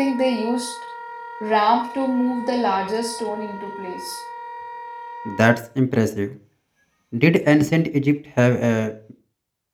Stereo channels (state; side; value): identical; both; correlation 1.00